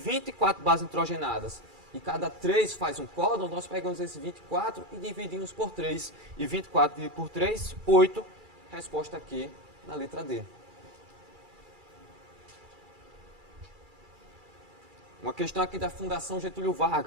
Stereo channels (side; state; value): left; late; 2.3 ms